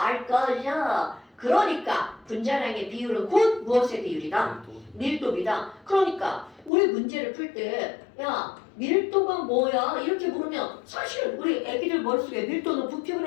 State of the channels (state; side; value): drops out; right; at 6.7 s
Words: 거죠. 그러니까 분자량의 비율은 곧 무엇의 비율이다? 밀도비다. 그러니까 우리 문제를 풀 때 야, 밀도가 뭐야? 이렇게 물으면 사실 우리 애기들 머릿속에 밀도는